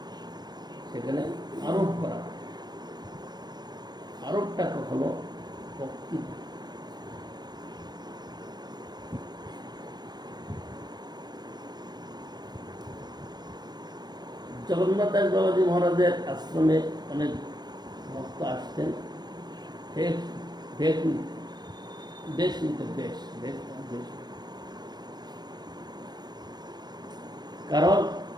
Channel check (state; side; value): late; left; 0.20 ms